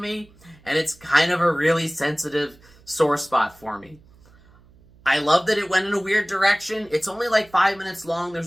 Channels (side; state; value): right; noise; hum, 27 dB below the sound